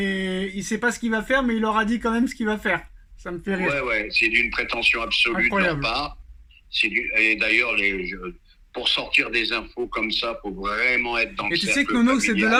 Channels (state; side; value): identical; both; correlation 1.00